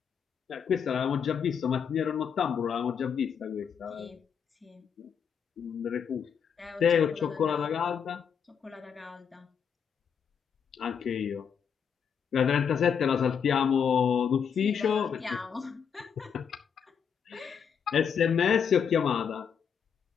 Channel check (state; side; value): quieter; right; 7.2 dB